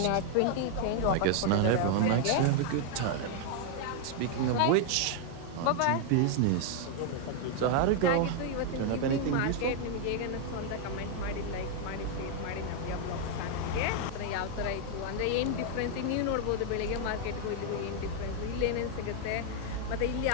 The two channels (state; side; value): different; both; correlation 0.00